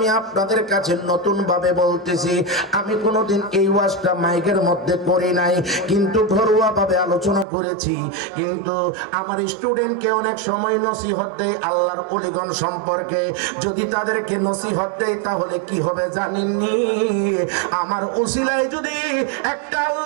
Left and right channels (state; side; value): drops out; left; at 7.5 s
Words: আপনাদের কাছে নতুন ভাবে বলতেছি। আমি কোনোদিন এই ওয়াজটা মাইকের মধ্যে করি নাই, কিন্তু ঘরোয়া ভাবে আলোচনা করেছি। কিন্তু আমার স্টুডেন্টকে অনেক সময় নসিহত দেয় আল্লাহর ওলিগণ সম্পর্কে। যদি তাদেরকে নসিহত দেয় তাহলে কি হবে জানেননি? আমার উসিলায় যদি একটা